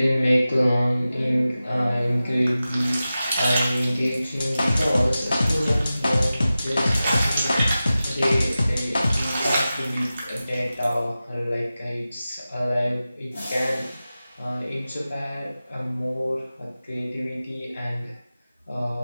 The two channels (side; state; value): both; inverted; correlation -0.95